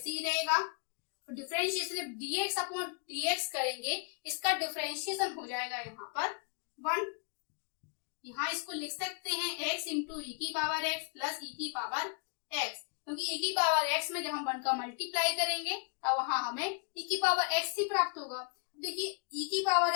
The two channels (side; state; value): right; quieter; 38.1 dB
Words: ही रहेगा और डिफरेंशिएशन dx अपॉन dx करेंगे, इसका डिफरेंशिएशन हो जाएगा यहाँ पर 1। यहाँ इसको लिख सकते हैं x इंटू ई की पावर x प्लस ई की पावर x, क्योंकि e की पावर x में जब हम 1 का मल्टीप्लाई करेंगे तब वहां हमें e की पावर x ही प्राप्त होगा। देखिए e की पावर